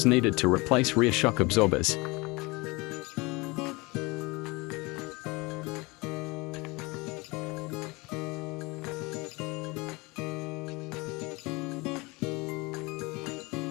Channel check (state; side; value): quieter; right; 24.8 dB